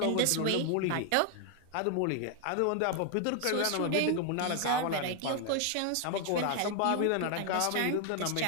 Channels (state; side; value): different; both; correlation 0.00